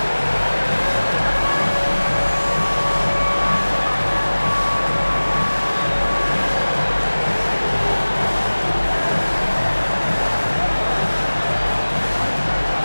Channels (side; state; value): both; inverted; correlation -1.00